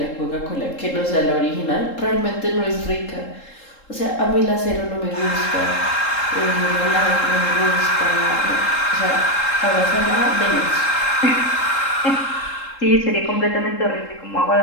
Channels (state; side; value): late; right; 3.7 ms